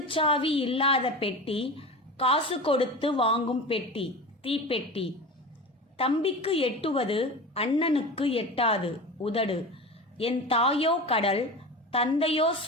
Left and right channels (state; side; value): normal; both; correlation 0.30